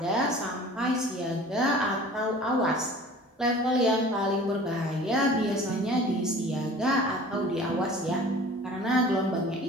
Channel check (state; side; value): normal; both; correlation 0.44